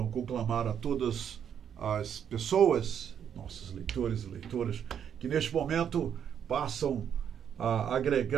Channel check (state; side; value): quieter; left; 8.6 dB